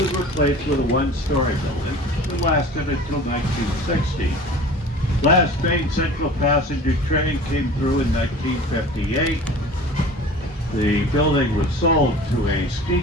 replaced with a one-story building that lasted until 1960. Last Main Central passenger train came through in 1958. The building was sold to a ski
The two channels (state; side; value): normal; both; correlation 0.41